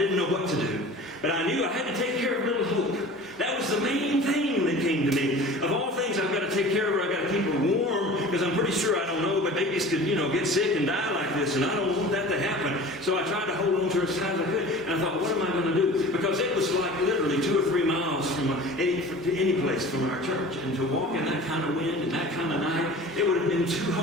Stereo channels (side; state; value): both; normal; correlation 0.40